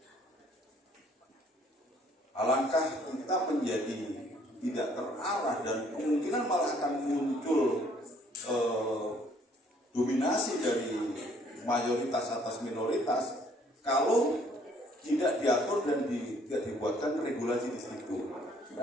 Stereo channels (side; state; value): both; normal; correlation 0.62